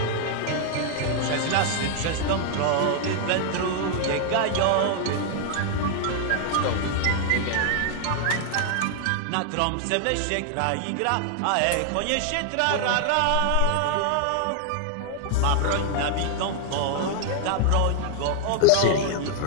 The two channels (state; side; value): different; both; correlation 0.00